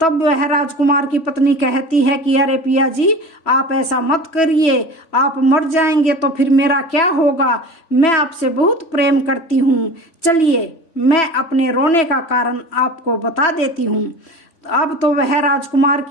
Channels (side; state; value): right; late; 3.0 ms